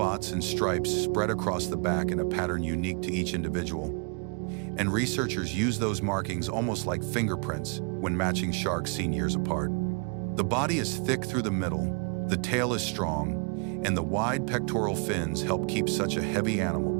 and stripes spread across the back in a pattern unique to each individual. And researchers use those markings almost like fingerprints when matching sharks seen years apart. The body is thick through the middle, the tail is strong, and the wide pectoral fins help keep such a heavy animal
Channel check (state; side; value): quieter; left; 37.7 dB